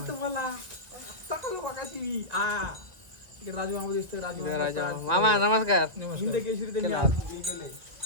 तुम्हाला राजा मामा नमस्कार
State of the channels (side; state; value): left; late; 1.9 ms